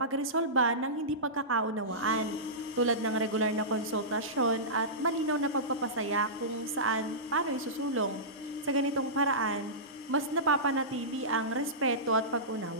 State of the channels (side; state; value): both; normal; correlation -0.18